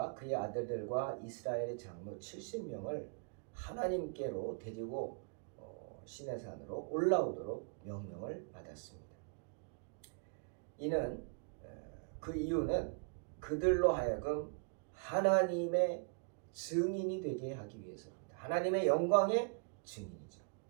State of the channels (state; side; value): quieter; left; 38.1 dB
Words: 그의 아들들과 이스라엘의 장로 70명을 하나님께로 데리고 시내산으로 올라오도록 명령을 받았습니다. 이는 그 이유는 그들로 하여금 하나님의 증인이 되게 하기 위해서입니다. 하나님의 영광의 증인이죠.